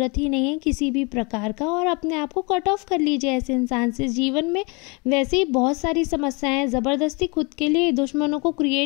ही नहीं है किसी भी प्रकार का, और अपने आप को कट ऑफ कर लीजिए ऐसे इंसान से। जीवन में वैसे ही बहुत सारी समस्याएं हैं, ज़बरदस्ती खुद के लिए दुश्मनों को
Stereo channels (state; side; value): quieter; right; 29.7 dB